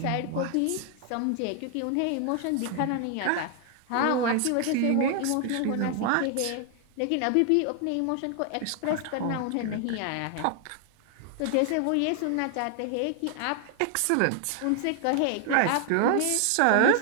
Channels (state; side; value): different; both; correlation 0.00